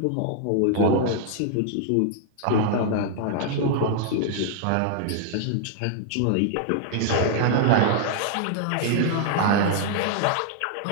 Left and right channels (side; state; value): both; different; correlation -0.01